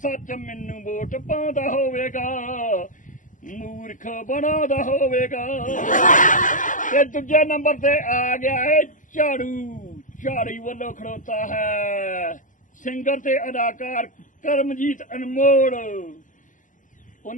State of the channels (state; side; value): late; right; 0.38 ms